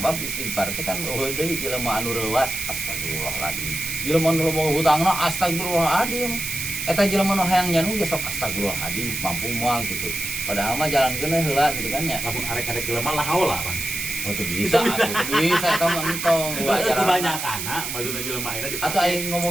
istighfar teh kan eueuh deui jelema anu reuwas, astagfirullahaladzim. Jelema anu loba hutangna astagfirullahaladzim. Eta jelema nu hayang nyanu ge sok astagfirullahaladzim, mampu moal gitu. Padahal mah jalankeun heula gitu kan ya. Lamun arek-arek jelema lah haula Bang. Oh tuh bisa, atuh bisa eta mah entong wajar. Kebanyakan maksudnya jelema ayeuna Atau aing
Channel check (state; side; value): noise; right; hiss, 4 dB below the sound